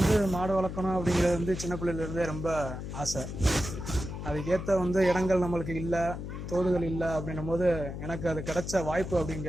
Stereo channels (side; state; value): left; noise; hum, 7 dB below the sound